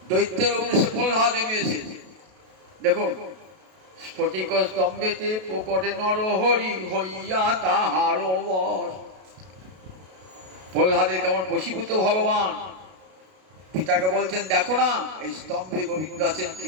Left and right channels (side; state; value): left; late; 32 ms